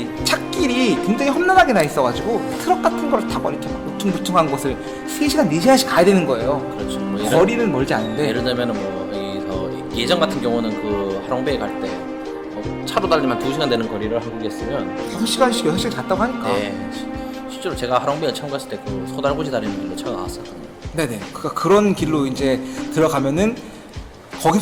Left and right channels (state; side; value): identical; both; correlation 1.00